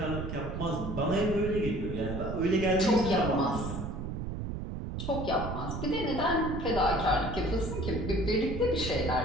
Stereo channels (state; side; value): noise; right; rumble, 5 dB below the sound